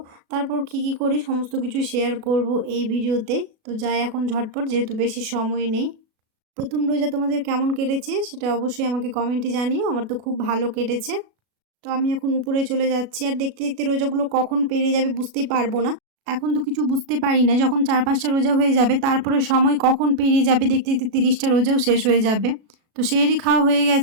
তারপর কী করি সমস্ত কিছু শেয়ার করব এই ভিডিওতে। তো যাই এখন ঝটপট, যেহেতু বেশি সময় নেই। প্রথম রোজা তোমাদের কেমন কেটেছে সেটা অবশ্যই আমাকে কমেন্টে জানিও। আমার তো খুব ভালো কেটেছে। তো আমি এখন উপরে চলে যাচ্ছি, আর দেখতে দেখতে রোজাগুলো কখন পেরিয়ে যাবে বুঝতেই পারবো না। এখন তো কিছু বুঝতে পারি না, যখন 4-5টা রোজা হয়ে যাবে তারপরে সময় কখন পেরিয়ে যাবে, দেখতে দেখতে 30টা রোজাও শেষ হয়ে যাবে। তো সেহরি খাওয়া হয়ে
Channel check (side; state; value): left; late; 36 ms